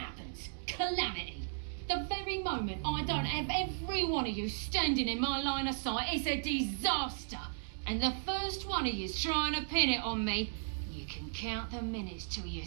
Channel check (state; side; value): silent; left; digital silence